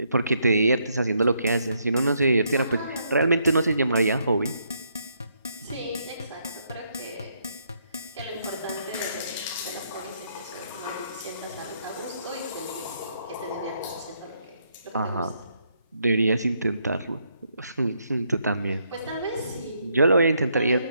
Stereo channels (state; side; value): inverted; both; correlation -0.74